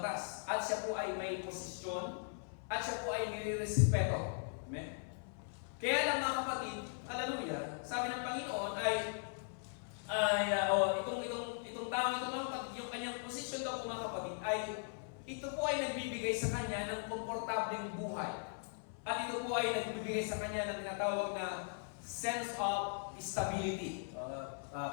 at siya po ay may posisyon, at siya po ay nire-respeto. Amen? Kaya lang mga kapatid, hallelujah, sabi ng Panginoon itong tao ito mga kapatid, yung kanyang posisyon daw po mga kapatid, ay ito po ay nagbibigay sa kanya ng komportableng buhay. At ito po ay nagbibigay sa kanya ng tinatawag na sense of stability.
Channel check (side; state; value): right; silent; 52 dB below the other